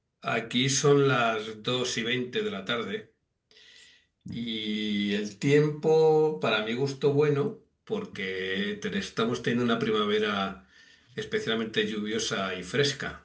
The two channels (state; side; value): identical; both; correlation 1.00